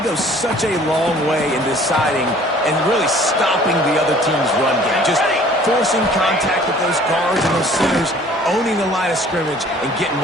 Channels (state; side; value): normal; both; correlation 0.53